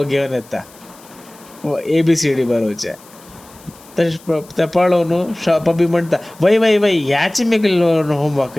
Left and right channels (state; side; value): noise; left; hiss, 24 dB below the sound